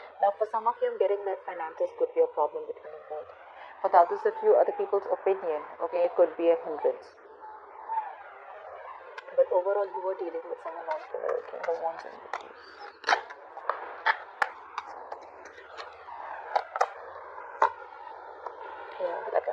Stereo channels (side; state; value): both; identical; correlation 1.00